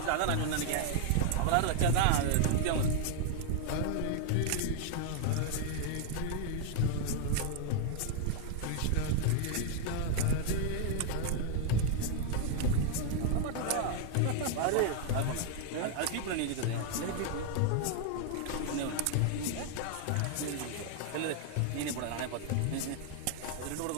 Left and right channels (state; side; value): different; both; correlation 0.00